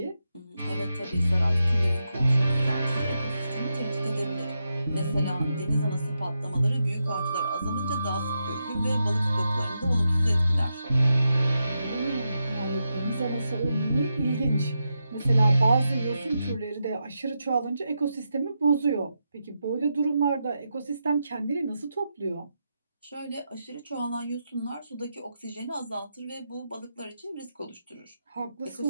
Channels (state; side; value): inverted; both; correlation -0.86